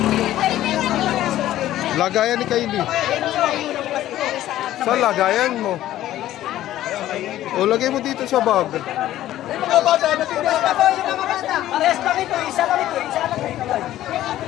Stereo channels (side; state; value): right; quieter; 13.6 dB